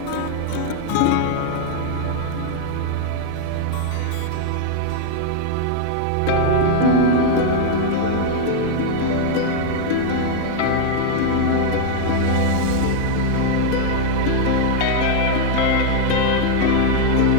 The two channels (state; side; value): different; both; correlation 0.00